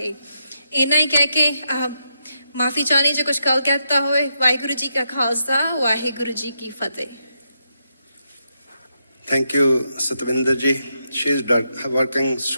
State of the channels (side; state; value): both; inverted; correlation -0.82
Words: ਇੰਨਾ ਹੀ ਕਹਿ ਕੇ ਮਾਫੀ ਚਾਹਨੀ ਜੇ ਕੁਝ ਗੱਲ ਕਹਿਤਾ ਹੋਏ। ਵਾਹਿਗੁਰੂ ਜੀ ਕਾ ਖਾਲਸਾ ਵਾਹਿਗੁਰੂ ਜੀ ਕੀ ਫਤਿਹ। Thank you, Satvinder ji. She's working